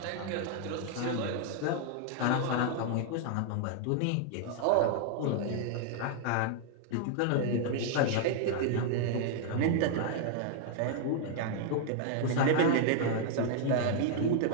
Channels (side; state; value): both; different; correlation 0.00